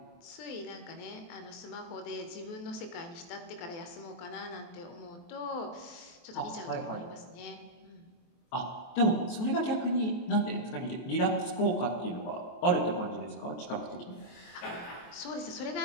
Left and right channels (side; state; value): right; late; 23 ms